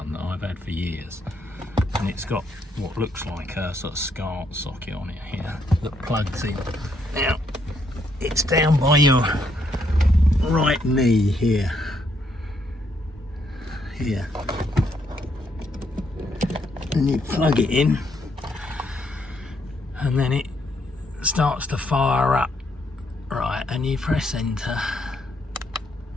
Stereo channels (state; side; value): normal; both; correlation 0.74